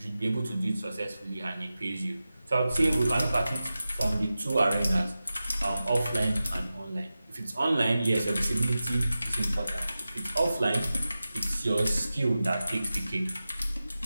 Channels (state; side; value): inverted; both; correlation -0.94